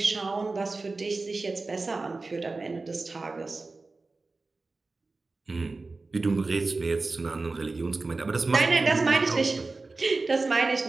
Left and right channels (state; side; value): quieter; left; 3.6 dB